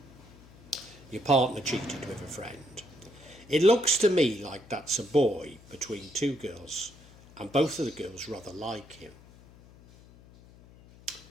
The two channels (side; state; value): left; noise; hum, 23 dB below the sound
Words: your partner cheated with a friend, it looks to me like that's a boy between two girls, and both of the girls rather like him.